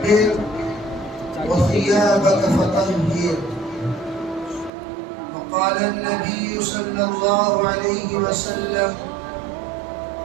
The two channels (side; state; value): left; drops out; at 4.7 s